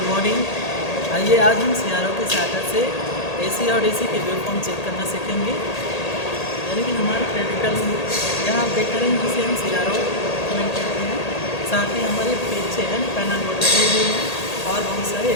morning. आइए आज हम सियारों के सहायता से एसी और डीसी के वेव फॉर्म चेक करना सीखेंगे। यानी कि हमारे प्रैक्टिकल यहाँ आप देख रहे हैं जिसे हम सियारों कमेंट करते हैं। साथ ही हमारे पीछे है पैनल बोर्ड लगे हुए हैं और बहुत सारे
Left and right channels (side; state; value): right; late; 1.8 ms